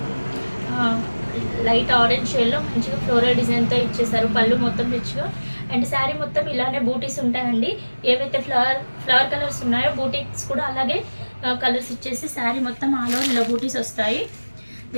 లైట్ ఆరెంజ్ షేడ్లో మంచిగా ఫ్లోరల్ డిజైన్తో ఇచ్చేసారు. పళ్ళు మొత్తం రిచ్గా అండ్ శారీ మొత్తం ఇలానే బూటీస్ ఉంటాయండి. ఏవైతే ఫ్లవర్ కలర్స్ ఉన్నాయో బూటీస్ కూడా అలాగే కలర్స్ ఇచ్చేసి శారీ మొత్తం ఆల్ ఓవర్ ఇలా బూటీస్ వస్తాయి.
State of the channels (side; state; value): both; inverted; correlation -1.00